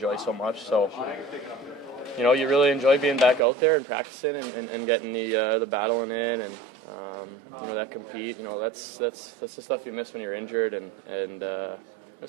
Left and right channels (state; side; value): drops out; left; at 3.4 s